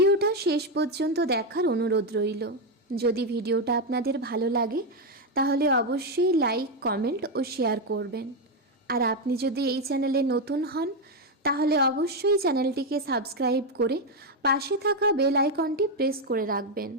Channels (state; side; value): normal; both; correlation 0.06